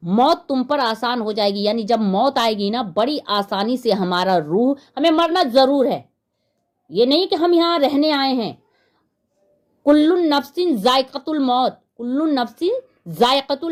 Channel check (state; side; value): identical; both; correlation 1.00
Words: موت تم پر آسان ہو جائے گی. یعنی جب موت آئے گی نا, بڑی آسانی سے ہمارا روح, ہمیں مرنا ضرور ہے, یہ نہیں کہ ہم یہاں رہنے آئے ہیں. کل نفس ذائقۃ الموت, کل نفس ذائقۃ